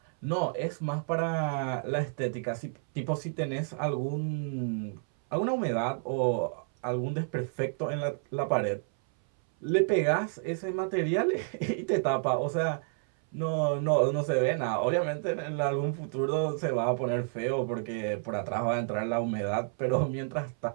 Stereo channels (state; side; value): silent; left; 58 dB below the other